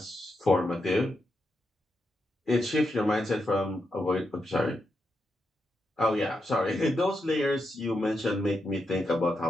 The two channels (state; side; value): normal; both; correlation 0.84